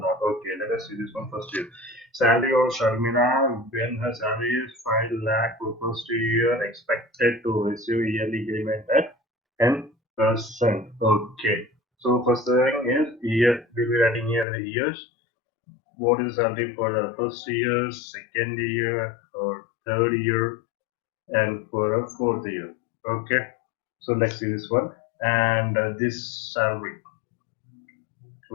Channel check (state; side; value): drops out; right; at 14.5 s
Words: Okay, let us see this one first here. Salary of Sharmila when her salary is 5 lakh for first year expected to receive yearly increment at 10%. Okay. So first thing is year, we'll be writing here the years. What is salary for the first year, second year, or third year, and for the fourth year? Okay, so let's see this one and this salary,